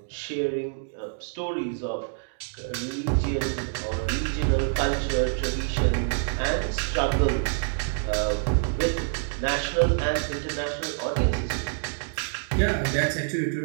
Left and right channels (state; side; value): silent; left; digital silence